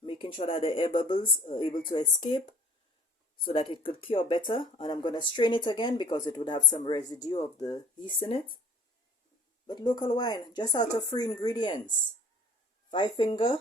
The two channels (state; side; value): normal; both; correlation 0.52